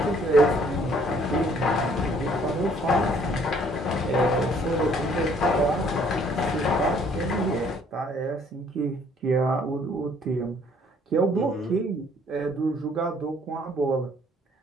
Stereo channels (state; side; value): normal; both; correlation 0.61